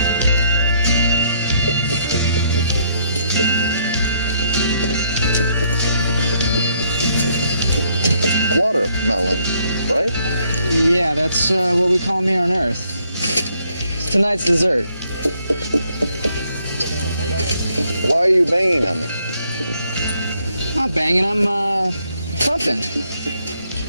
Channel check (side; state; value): both; inverted; correlation -0.70